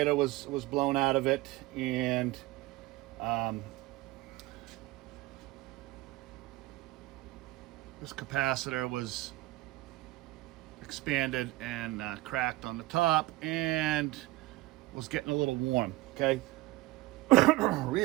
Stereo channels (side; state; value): left; quieter; 19.2 dB